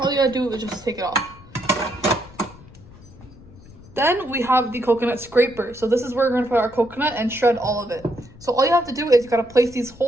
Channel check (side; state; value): left; noise; rumble, 21 dB below the sound